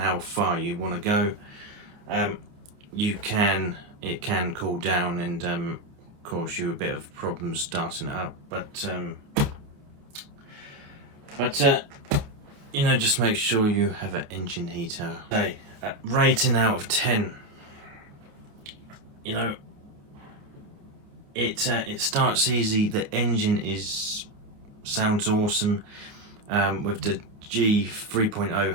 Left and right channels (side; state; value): left; late; 28 ms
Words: far you want to go, it can cool down and cause you a bit of problems starting it up. But you know, just make sure you have an engine heater. Okay, rating out of 10. You know, it starts easy. The engine sounds awesome, with the G3.0